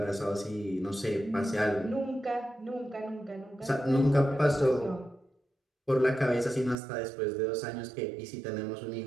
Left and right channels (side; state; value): left; drops out; at 6.8 s